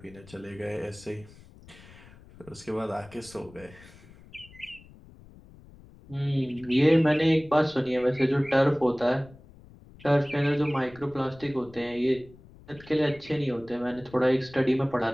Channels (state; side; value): noise; left; rumble, 22 dB below the sound